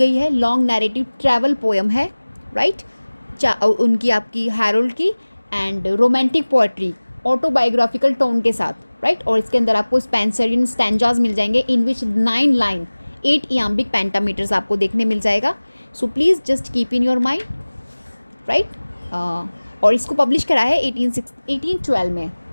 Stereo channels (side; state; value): both; inverted; correlation -1.00